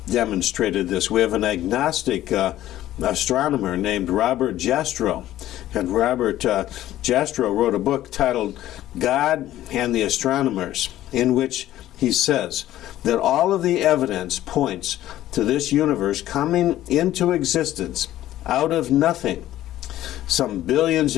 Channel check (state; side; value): quieter; right; 13.8 dB